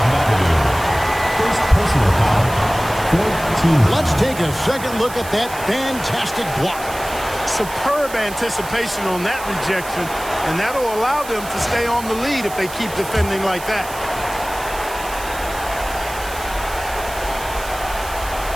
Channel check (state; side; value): noise; right; hiss, 14 dB below the sound